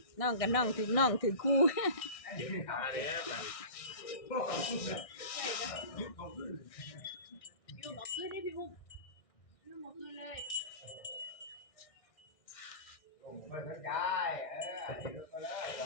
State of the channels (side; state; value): right; late; 1.6 ms